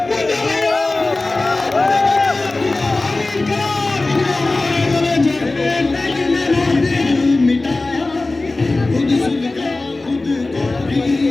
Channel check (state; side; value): quieter; right; 3.1 dB